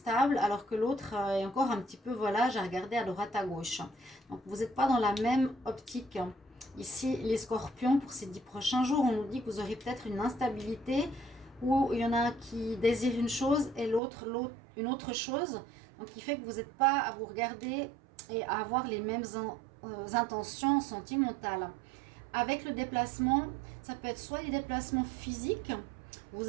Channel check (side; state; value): left; drops out; at 14.0 s